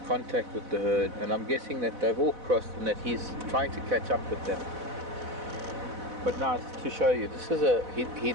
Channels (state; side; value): late; left; 4.0 ms